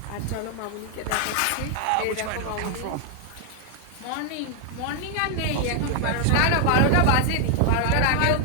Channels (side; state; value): both; different; correlation 0.00